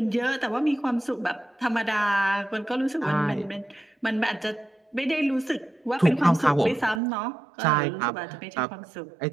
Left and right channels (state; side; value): drops out; left; at 7.0 s